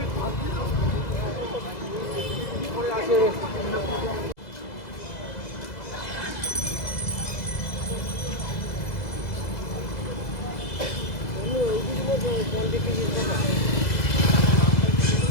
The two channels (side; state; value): right; late; 2.0 ms